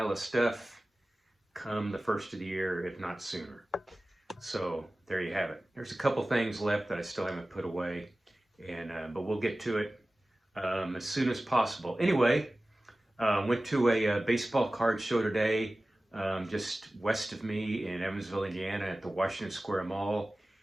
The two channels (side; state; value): both; normal; correlation 0.97